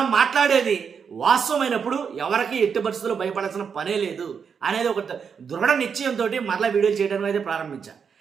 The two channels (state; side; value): quieter; left; 6.5 dB